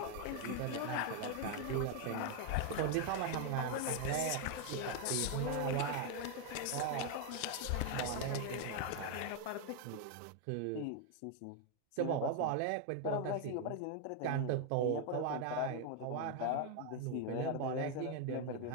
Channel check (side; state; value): both; different; correlation 0.01